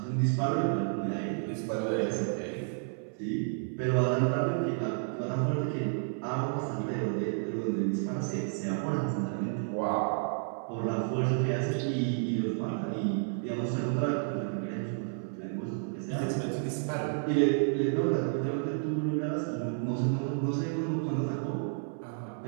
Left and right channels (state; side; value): silent; left; 57 dB below the other